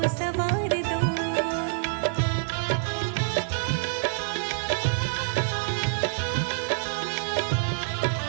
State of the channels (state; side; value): silent; left; digital silence